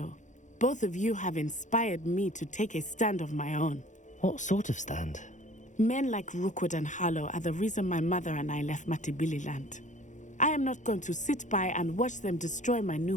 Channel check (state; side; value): late; right; 0.36 ms